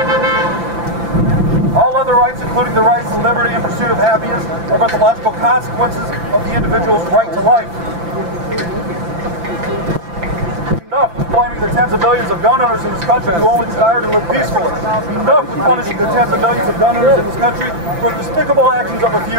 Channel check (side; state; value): left; late; 5.9 ms